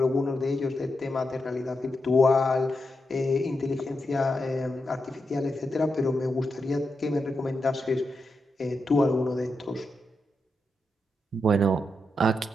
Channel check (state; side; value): normal; both; correlation 0.86